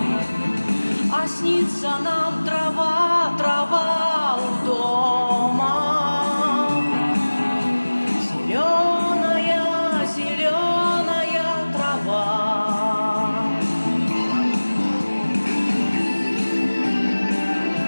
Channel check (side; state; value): both; inverted; correlation -1.00